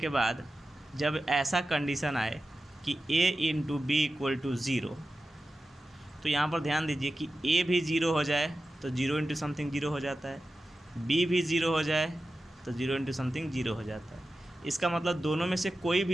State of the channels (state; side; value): normal; both; correlation 0.93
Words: बाद जब ऐसा कंडीशन आए कि a into B equal to 0, तो यहाँ पर ध्यान दीजिए कि a भी 0 हो जाए तो 0 इंटू समथिंग 0 हो जाता है, b भी 0 हो जाए तो 0 इंटू समथिंग 0 हो जाता है। इसका मतलब दोनों में से कोई